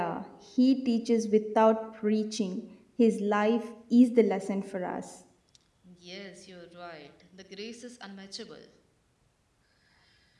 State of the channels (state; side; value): identical; both; correlation 1.00